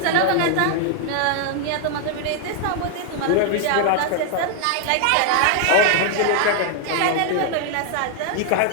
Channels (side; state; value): both; different; correlation 0.00